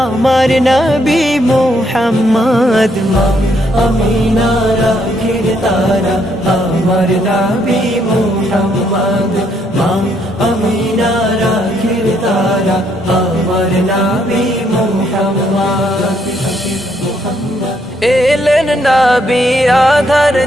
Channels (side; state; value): both; normal; correlation 0.72